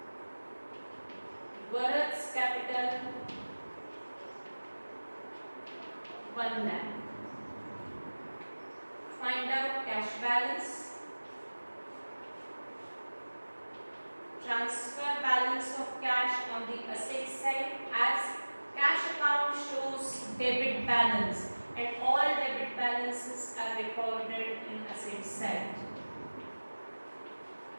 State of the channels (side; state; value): both; inverted; correlation -1.00